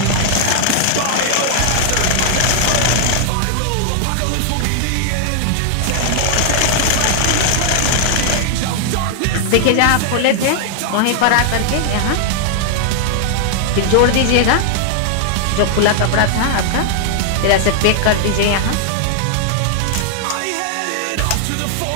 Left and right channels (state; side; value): different; both; correlation 0.00